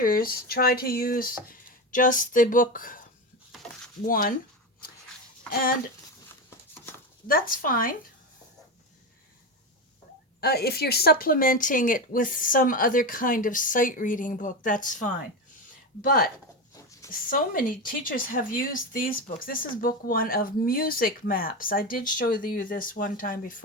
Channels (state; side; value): normal; both; correlation 0.18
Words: try to use just the book 1, and that's fine. If you're supplementing it with some other kind of sight reading book, that's fine. But so many teachers have used these books. This is book 1 of music maps. I did show you this one time